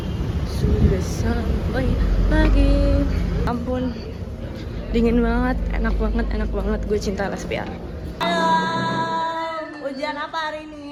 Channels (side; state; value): both; identical; correlation 1.00